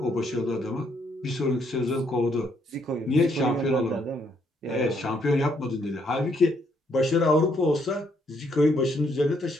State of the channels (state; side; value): normal; both; correlation 0.72